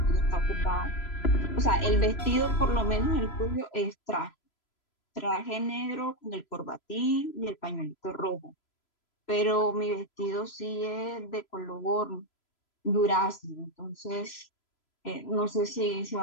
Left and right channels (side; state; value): right; late; 3.0 ms